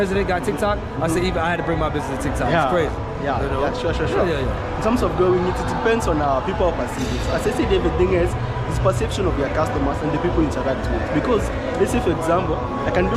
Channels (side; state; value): both; identical; correlation 1.00